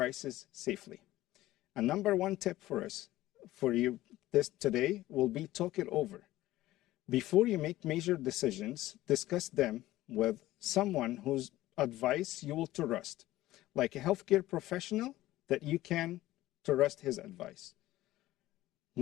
safely. A number one tip for you this today will be talk it over. Before you make major decisions, discuss them with someone whose advice you will trust, like a healthcare professional that you can trust his advice.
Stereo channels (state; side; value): quieter; right; 16.1 dB